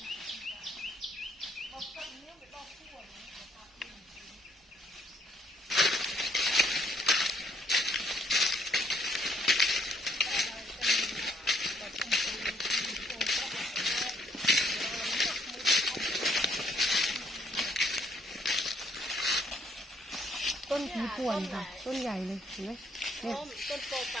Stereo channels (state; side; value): normal; both; correlation 0.68